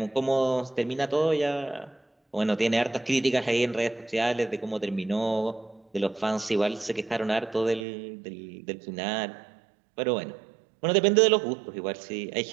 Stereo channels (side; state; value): left; drops out; at 7.9 s